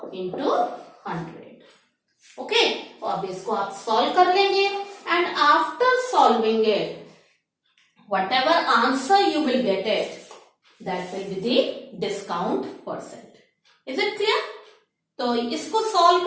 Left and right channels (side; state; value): both; identical; correlation 1.00